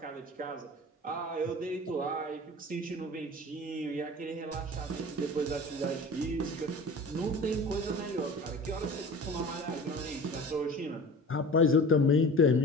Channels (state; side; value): normal; both; correlation 0.38